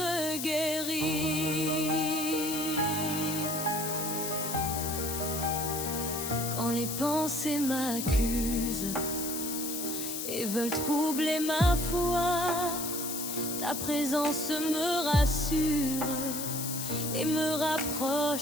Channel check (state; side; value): noise; left; hiss, 4 dB below the sound